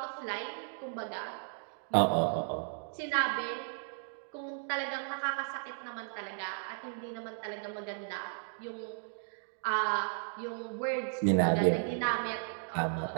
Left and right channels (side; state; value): left; silent; digital silence